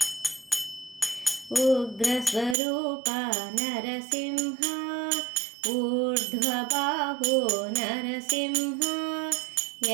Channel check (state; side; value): drops out; left; at 2.6 s